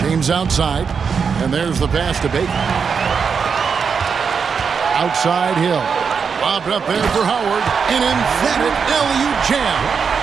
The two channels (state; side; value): quieter; left; 6.1 dB